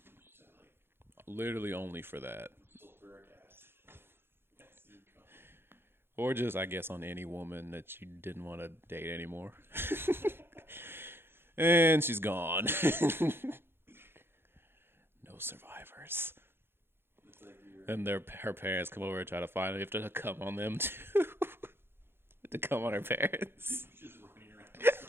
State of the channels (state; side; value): late; left; 0.11 ms